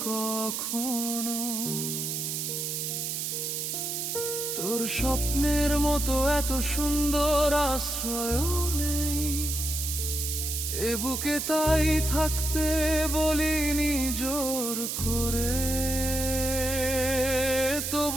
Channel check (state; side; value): noise; right; hiss, 2 dB below the sound